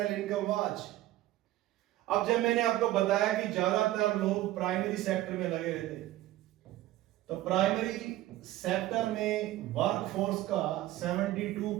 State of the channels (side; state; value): left; quieter; 15.4 dB